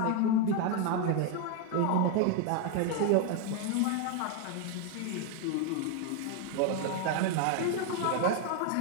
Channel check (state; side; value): different; both; correlation 0.01